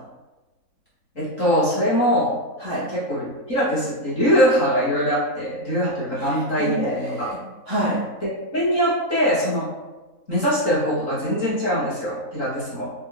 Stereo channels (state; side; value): late; right; 3.8 ms